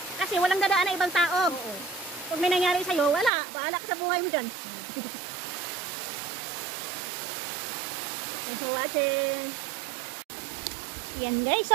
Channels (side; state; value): left; drops out; at 3.3 s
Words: Kasi walang dadaan na ibang tao. Pag may nangyari sa'yo, wala. Bahala ka sa buhay mo dyan. Thanks for watching. Yan, guys.